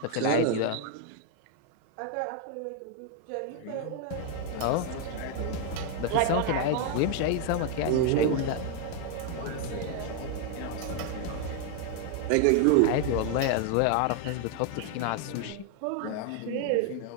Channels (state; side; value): different; both; correlation 0.00